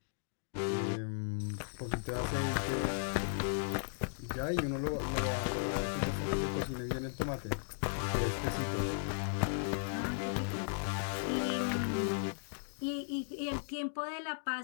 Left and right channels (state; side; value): silent; right; digital silence